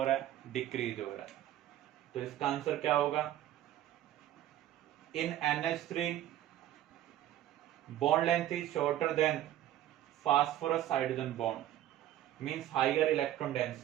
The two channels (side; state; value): left; quieter; 12.8 dB